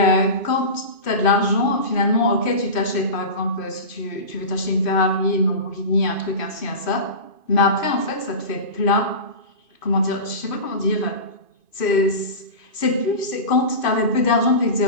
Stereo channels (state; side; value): late; right; 2.5 ms